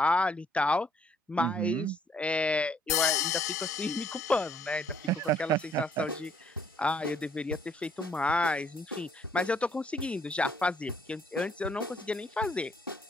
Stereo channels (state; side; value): normal; both; correlation 0.64